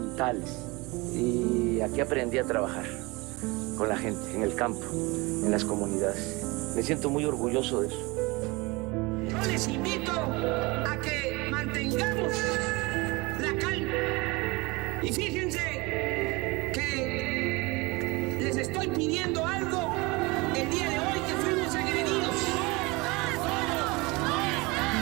Y aquí aprendí a trabajar con la gente, en el campo, en las comunidades. Me siento muy orgulloso de eso. Yo les invito a que mantengamos la calma. Y fíjense que les estoy pidiendo algo el día de hoy que fuimos agredidos.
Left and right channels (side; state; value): left; quieter; 24.7 dB